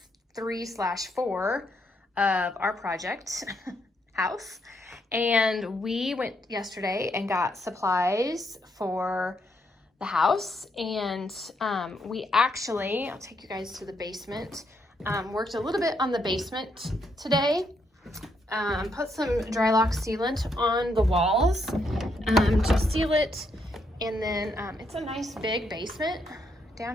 3/4 of our project house. And we went yesterday and got supplies for the house, and we actually, I'll take you guys to the basement, worked a little bit on the basement today, put some dry lock sealant on the walls to seal it, and then it's a nice big basement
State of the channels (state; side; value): normal; both; correlation 0.76